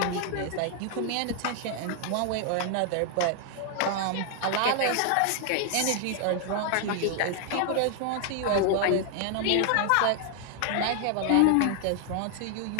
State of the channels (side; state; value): both; different; correlation 0.00